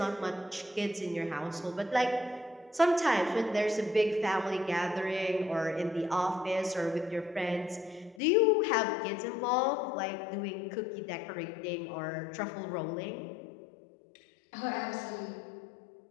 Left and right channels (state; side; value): drops out; right; at 8.2 s